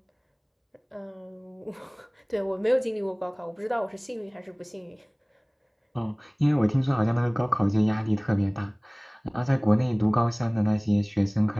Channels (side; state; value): both; identical; correlation 1.00